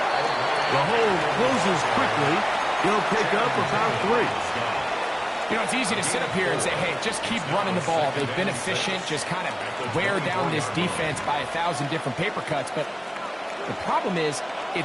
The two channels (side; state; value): both; identical; correlation 1.00